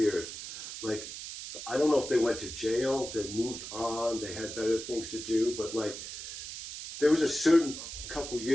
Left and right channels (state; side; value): noise; right; hiss, 9 dB below the sound